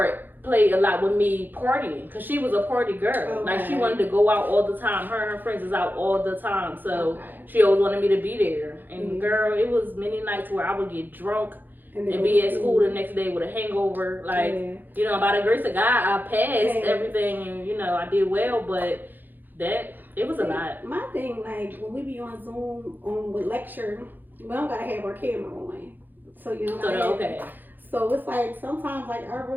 played a lot with me partying, because she was a party girl. Okay. Like, she wanted to go out all the time. Her and her friends is out all the time, so she always wanted me to be there. And girl, it was many nights where I would get drunk and be at school the next day with a hangover. Like, by the grace of God, I passed everything, and I did well, but it was a lot. My thing, like, when we be on Zoom with lecture, we don't gotta have our camera on. So, okay. So it's like, sometimes, like, I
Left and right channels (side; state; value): left; late; 0.089 ms